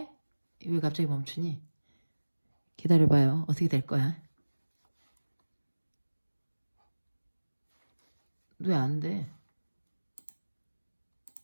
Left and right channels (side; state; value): both; inverted; correlation -1.00